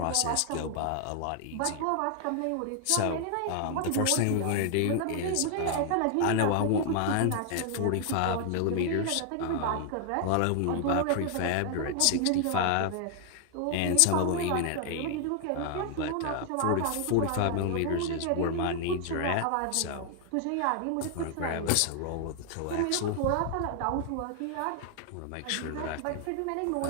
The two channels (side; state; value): both; different; correlation 0.00